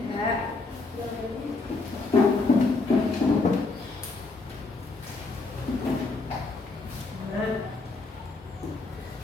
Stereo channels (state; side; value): quieter; right; 3.7 dB